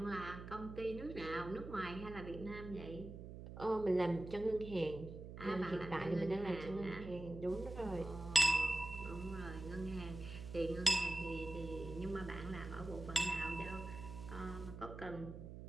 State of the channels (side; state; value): right; noise; hum, 10 dB below the sound